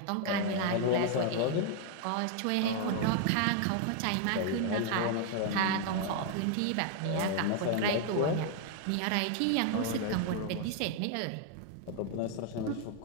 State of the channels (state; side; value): different; both; correlation 0.00